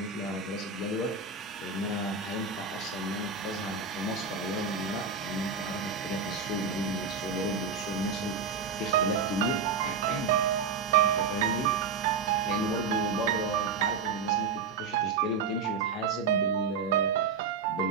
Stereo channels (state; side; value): quieter; left; 5.2 dB